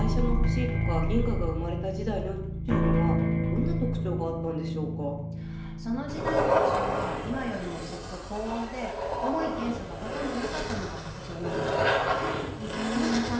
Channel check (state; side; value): identical; both; correlation 1.00